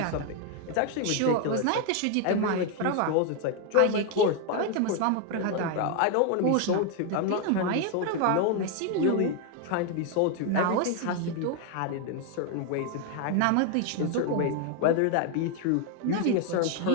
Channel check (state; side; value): different; both; correlation 0.01